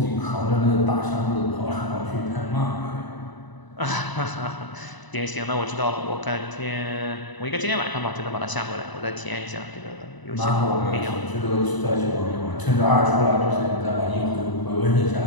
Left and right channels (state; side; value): late; right; 1.0 ms